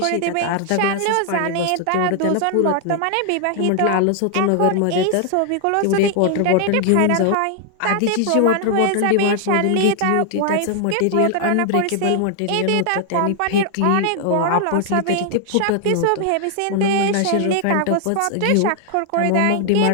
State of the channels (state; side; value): different; both; correlation 0.00